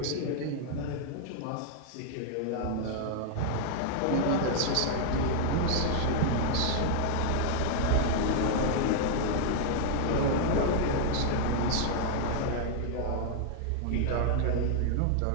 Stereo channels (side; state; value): both; different; correlation 0.00